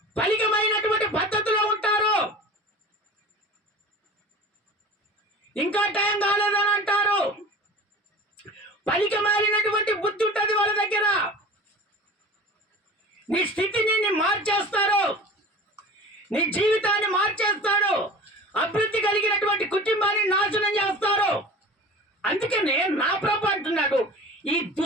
పలికమైనటువంటి పద్ధతిలో ఉంటారు, ఇంకా టైం కాలేదని అంటారు. పలికి మారినటువంటి బుద్ధి ఉంటుంది వాళ్ళ దగ్గర. నీ స్థితిని మార్చేస్తారు, నీ జీవితాన్ని మార్చేస్తాడు, అభివృద్ధి కలిగినటువంటి కుటుంబాన్ని నాశనం చేస్తారు. అందుకనే నా ప్రభు అంటున్నాడు, ఈ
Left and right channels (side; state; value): both; normal; correlation 0.38